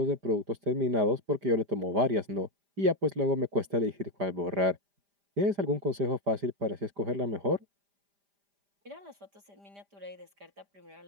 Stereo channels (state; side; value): late; left; 5.0 ms